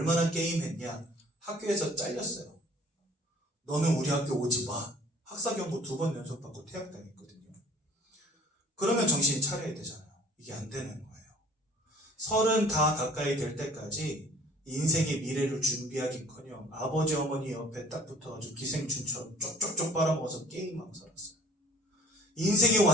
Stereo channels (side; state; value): both; normal; correlation 0.49